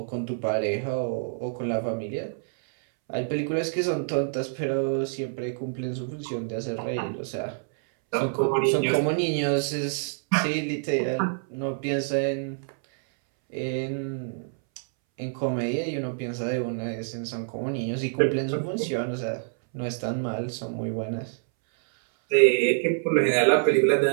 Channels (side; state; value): left; silent; 60 dB below the other